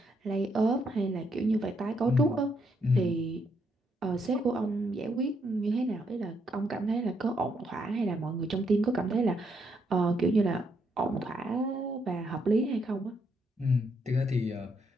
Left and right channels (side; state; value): both; normal; correlation 0.75